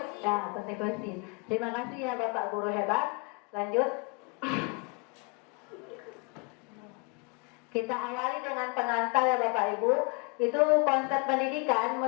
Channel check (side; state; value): right; quieter; 33.9 dB